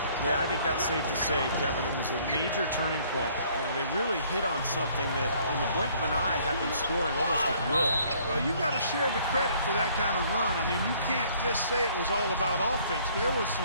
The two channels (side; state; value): both; inverted; correlation -0.60